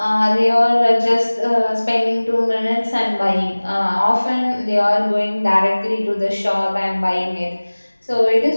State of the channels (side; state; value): both; inverted; correlation -1.00